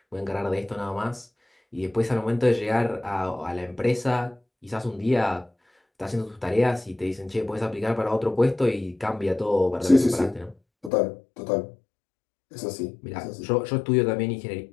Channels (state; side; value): drops out; right; at 10.9 s